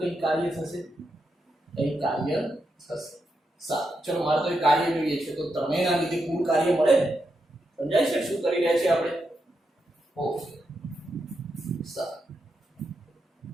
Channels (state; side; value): normal; both; correlation 0.84